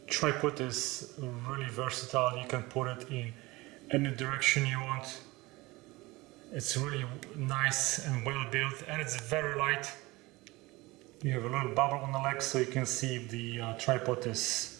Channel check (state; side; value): quieter; left; 21.6 dB